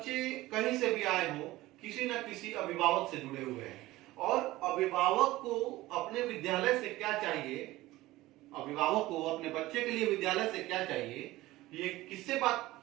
कहीं से भी आए हो, किसी न किसी अभिभावक से जुड़े हुए हैं। और अभिभावक को अपने विद्यालय से क्या चाहिए, अभिभावक को अपने बच्चे के लिए विद्यालय से क्या चाहिए, ये किससे बात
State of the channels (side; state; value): left; quieter; 17.8 dB